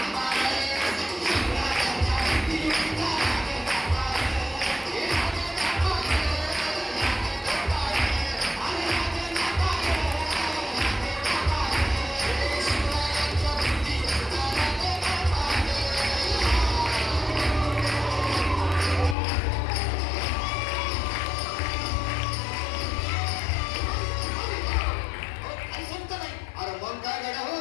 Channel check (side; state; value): right; drops out; at 19.2 s